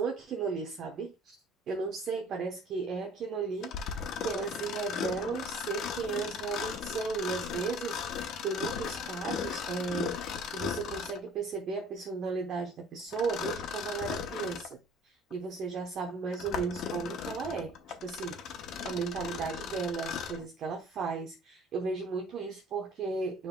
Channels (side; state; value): both; normal; correlation 0.50